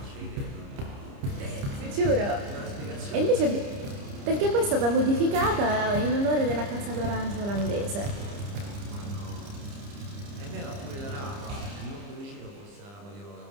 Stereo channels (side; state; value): left; late; 30 ms